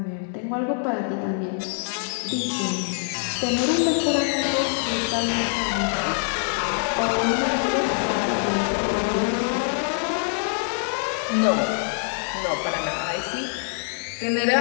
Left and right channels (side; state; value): right; silent; 56 dB below the other